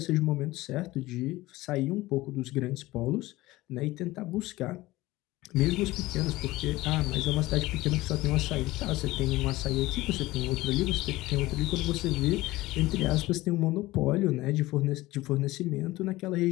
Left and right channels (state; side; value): quieter; right; 18.6 dB